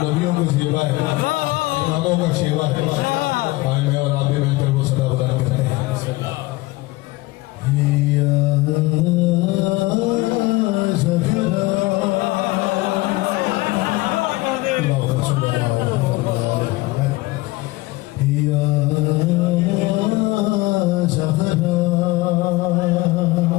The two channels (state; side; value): quieter; right; 20.5 dB